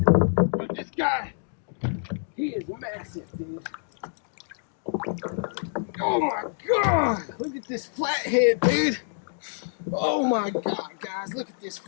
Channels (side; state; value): right; silent; digital silence